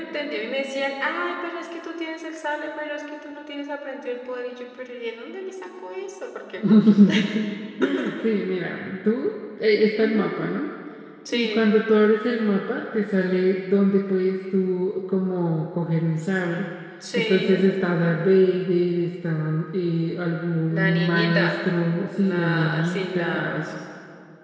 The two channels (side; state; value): both; identical; correlation 1.00